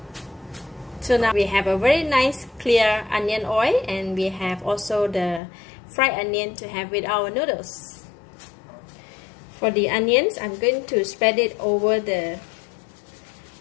So now we have a very nice clear onion oil and we have also the fried onion to have with our noodles. For the onions, I'm going to spread it over the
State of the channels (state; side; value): drops out; right; at 5.4 s